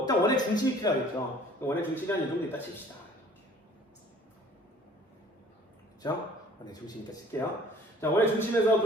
원의 중심이 필요하겠죠. 원의 중심이 한 이 정도 있다 칩시다. 그렇죠? 원의 중심 있다 칠게요. 자, 원의 중심에서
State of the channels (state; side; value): normal; both; correlation 0.53